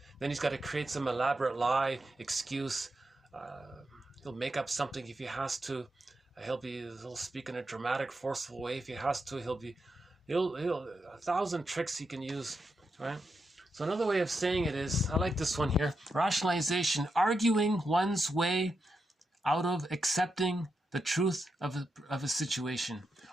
Then he's got to create some elaborate lie, excuse. He'll make up something if he has to. He'll speak in a dramatic, forceful way if he has to. He'll 1,000 tricks he can use, right? So another way of saying it is, I like this one here, rationalization, arguing one's way out of accepting the truth of a situation.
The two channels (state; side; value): normal; both; correlation 0.85